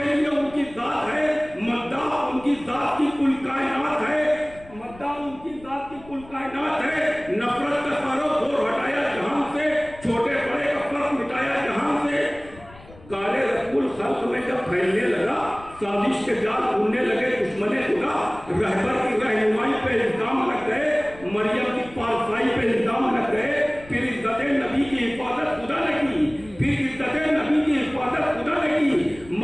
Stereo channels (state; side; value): noise; left; rumble, 21 dB below the sound